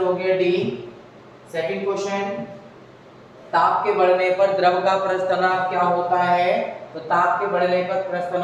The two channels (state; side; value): identical; both; correlation 1.00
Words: हो गया डी। सेकंड क्वेश्चन, ताप के बढ़ने पर द्रव का प्रस्थानांक क्या होता है। तो ताप के बढ़ने पर